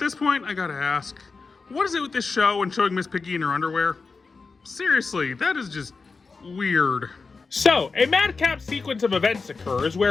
point, I gotta ask, what is it with this show and showing Miss Piggy in her underwear? Seriously, that is just weird. So, a madcap sequence of events occurs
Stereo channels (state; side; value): quieter; right; 4.4 dB